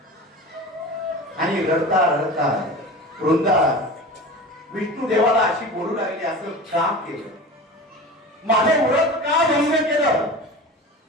आणि रडता रडता वृंदा विष्णू देवाला अशी बोलू लागली, असं का केलं, माझे व्रत का भंग केलं,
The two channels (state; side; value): normal; both; correlation 0.33